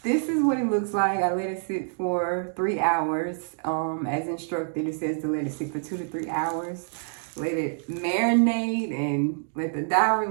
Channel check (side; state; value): left; silent; digital silence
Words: this is what it looks like. I let it sit for 3 hours. As instructed, it says to let it sit for 2 to 3 hours. Let it marinate and let the dye